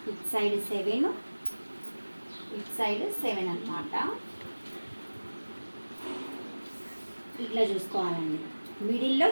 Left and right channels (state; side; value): inverted; both; correlation -1.00